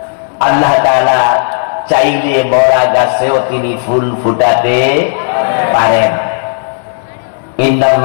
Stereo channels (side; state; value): right; silent; digital silence